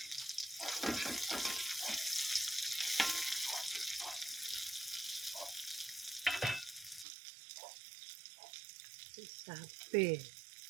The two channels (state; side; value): drops out; left; at 7.1 s